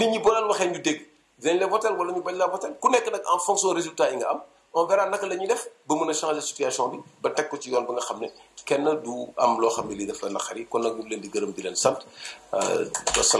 ñi boo leen waxee ñu dégg dinañ la voter wala ñu bañ la voter ku nekk nag en fonction résultat yi nga am on verra naka la ñuy def ba mën a changer situation bi ba teg ko ci yoon ba nga xam ne kenn du am loo xam ne lii daf la naqari kon nag ñu ngi leen di gërëm di leen sant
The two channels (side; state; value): both; identical; correlation 1.00